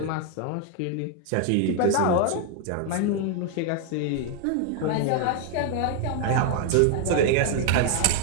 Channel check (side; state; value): both; different; correlation 0.00